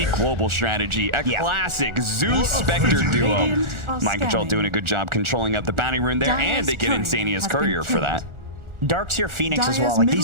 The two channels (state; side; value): late; left; 1.4 ms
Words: global strategy, a classic Zeus Spectre duo. Mind Control doing a good job controlling up the bounty rune there, and they get Insania's Courier for that. Darkseer Phoenix as well. Like